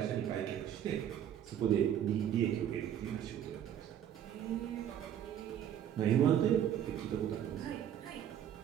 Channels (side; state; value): left; quieter; 10.1 dB